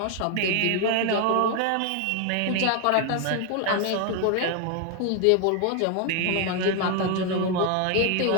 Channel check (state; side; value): different; both; correlation 0.01